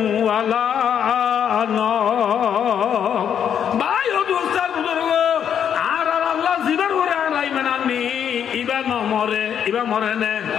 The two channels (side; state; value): right; quieter; 8.6 dB